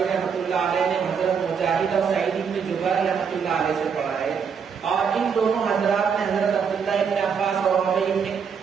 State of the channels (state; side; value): quieter; left; 6.6 dB